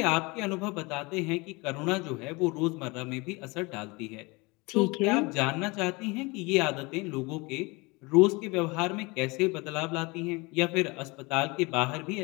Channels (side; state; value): right; quieter; 25.7 dB